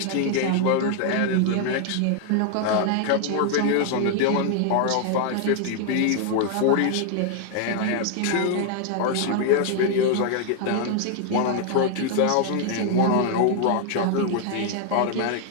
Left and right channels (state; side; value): different; both; correlation 0.00